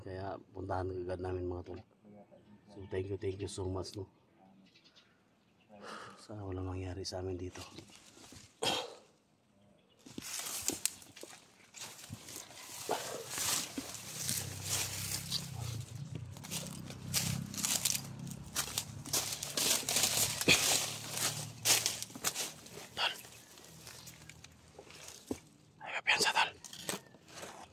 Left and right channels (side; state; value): both; identical; correlation 1.00